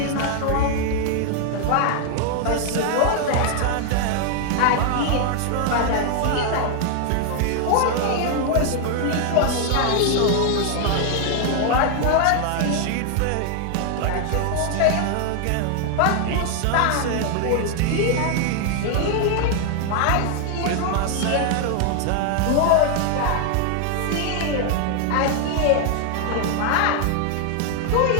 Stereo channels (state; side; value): different; both; correlation 0.00